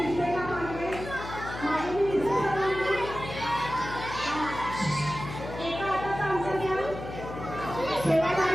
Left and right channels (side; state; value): left; noise; hum, 10 dB below the sound